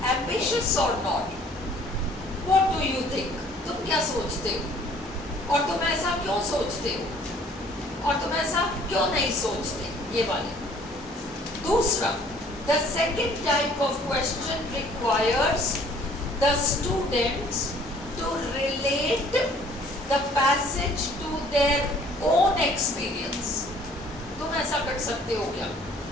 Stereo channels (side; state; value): both; normal; correlation 0.56